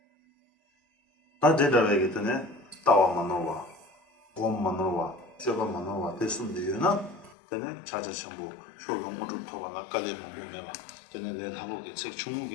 다 대답하기 전에 따와 만나와, 곰 만나와, 셔바 만나와 됐으면 되나? 전에 자자 전부 쇼롱 모두 토가나 깔리면 몸에봐. 전에 내 하고게 책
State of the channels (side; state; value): right; drops out; at 7.4 s